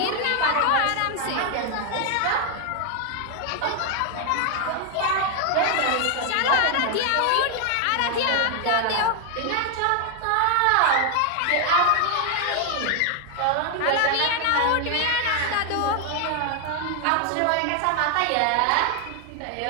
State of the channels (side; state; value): both; different; correlation 0.00